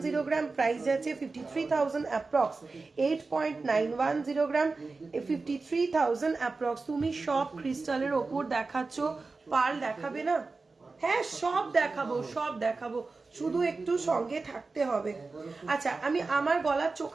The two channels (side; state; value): left; quieter; 3.9 dB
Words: গ্রাম, প্রাইস যাচ্ছে 53,000 অ্যাপ্রক্স, 8.910 গ্রাম, 53,000 অ্যাপ্রক্স। তুমি সব ক্রিস্টালের ওপর দেখাচ্ছ, পার্ল দেখাবে না? হ্যাঁ সব দেখাবো, সব দেখাবো, শুধু একটু সঙ্গে থাকতে হবে। আচ্ছা আমি আমার গলার